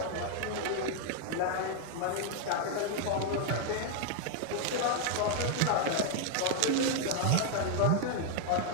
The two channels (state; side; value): different; both; correlation 0.00